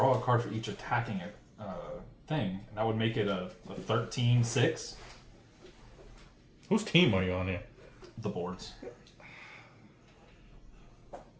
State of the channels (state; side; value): identical; both; correlation 1.00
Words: a card for each attacking thing, and that would make it a 13/6. Whose team are you on here? The boards.